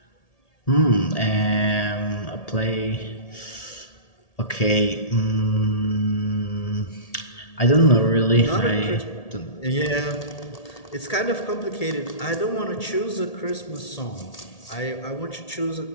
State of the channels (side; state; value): right; late; 1.8 ms